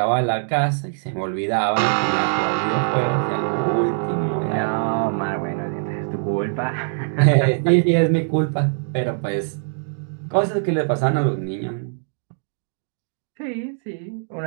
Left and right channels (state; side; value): silent; left; digital silence